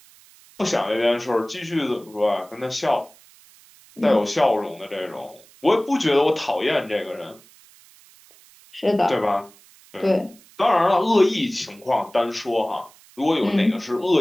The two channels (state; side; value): noise; right; hiss, 26 dB below the sound